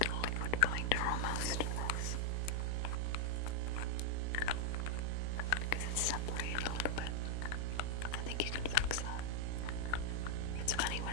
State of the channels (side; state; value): both; different; correlation -0.01